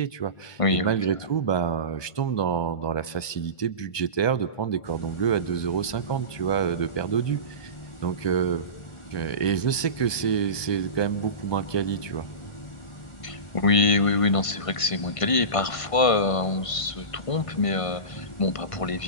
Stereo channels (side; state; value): right; late; 1.2 ms